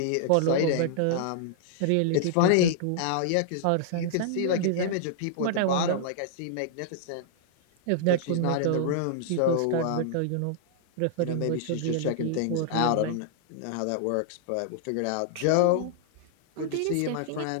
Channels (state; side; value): different; both; correlation -0.01